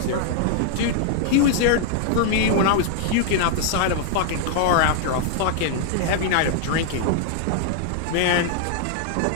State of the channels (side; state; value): both; different; correlation 0.00